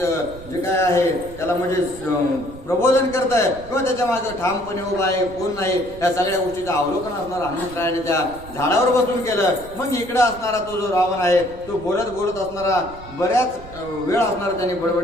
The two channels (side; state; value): right; noise; rumble, 17 dB below the sound